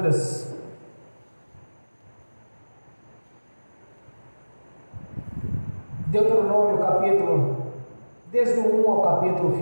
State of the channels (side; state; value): both; inverted; correlation -1.00